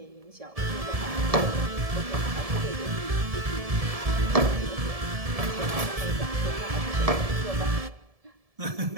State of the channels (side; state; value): left; late; 1.7 ms